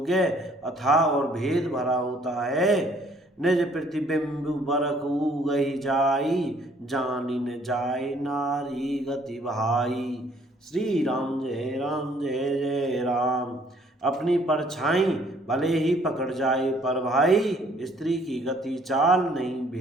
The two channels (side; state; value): both; normal; correlation 0.61